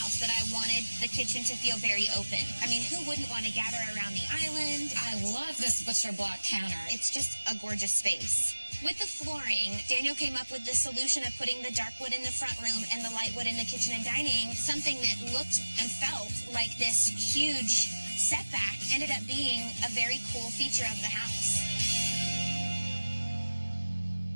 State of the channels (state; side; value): inverted; both; correlation -1.00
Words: that I wanted the kitchen to feel very open. I mean, who wouldn't want to gather around the island? I love this butcher block counter. It's just a gorgeous space. With the flooring, Daniel came up with the solution of putting the dark wood in the front room and the light wood in the kitchen and dining. Something that looked and felt like this huge setback ended up being a very cool feature of the house.